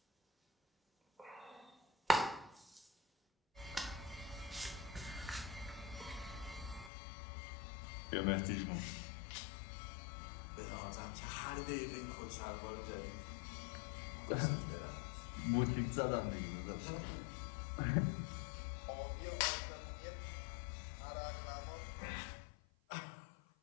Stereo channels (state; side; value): drops out; right; at 6.9 s